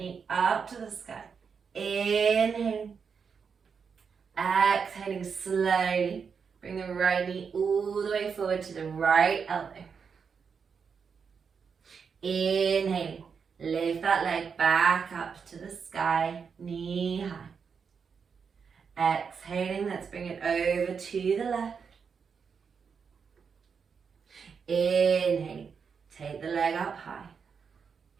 up to the sky. Inhaling. Exhaling slowly. Bring the right knee all the way forward to the right elbow. Inhaling. Lift that leg back up to the sky, knee high. Exhaling, let's bring it over to the left. Inhaling, take the leg up high.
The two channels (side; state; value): left; quieter; 6.1 dB